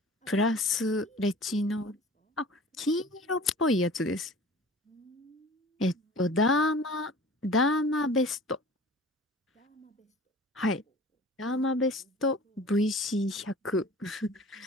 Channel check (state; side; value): normal; both; correlation 0.43